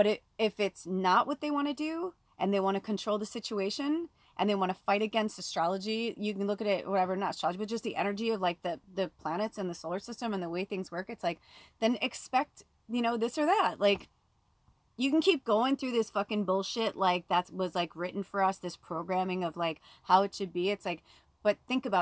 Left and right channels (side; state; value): both; identical; correlation 1.00